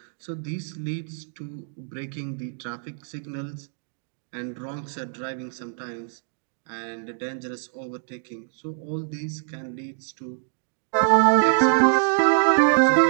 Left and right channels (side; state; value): left; silent; 61 dB below the other